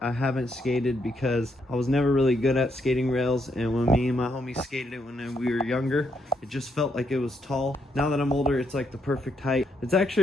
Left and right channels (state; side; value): normal; both; correlation 0.76